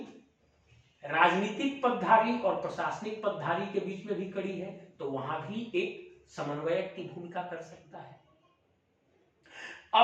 राजनीतिक पदधारी और प्रशासनिक पदधारी के बीच में भी खड़ी है तो वहां भी एक समन्वयक की भूमिका कर सकता है।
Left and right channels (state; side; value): identical; both; correlation 1.00